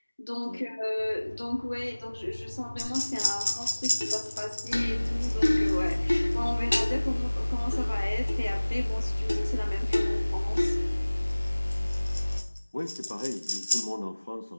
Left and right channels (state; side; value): inverted; both; correlation -1.00